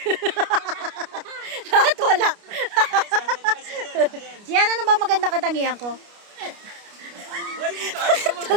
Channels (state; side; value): late; left; 29 ms